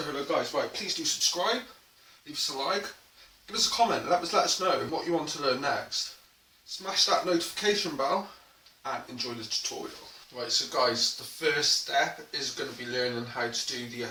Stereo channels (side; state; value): both; identical; correlation 1.00